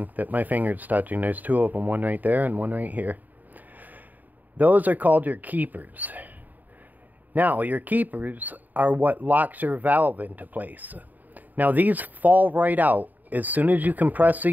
that my finger's touching. There's two of them, one right there and one right here. Those are called your keepers. Now, your keepers are what locks your valve into place. Now, these fall right out. As soon as you compress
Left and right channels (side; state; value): left; late; 0.084 ms